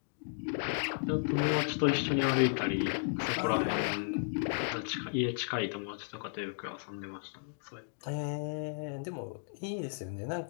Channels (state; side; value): silent; right; digital silence